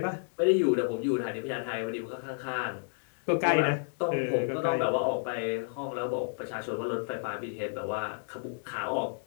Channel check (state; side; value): silent; right; digital silence